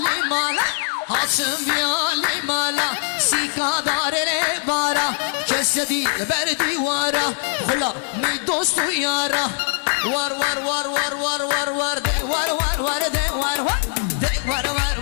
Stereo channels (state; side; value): silent; right; digital silence